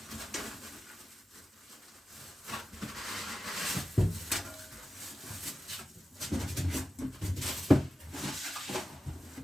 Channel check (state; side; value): normal; both; correlation 0.93